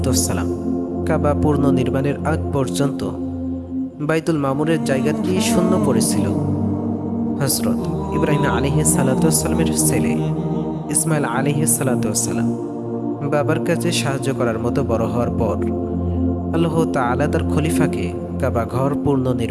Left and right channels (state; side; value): identical; both; correlation 1.00